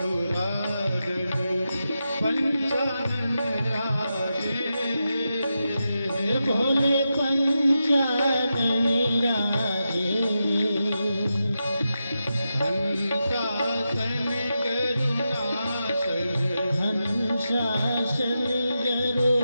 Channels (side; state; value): both; inverted; correlation -0.89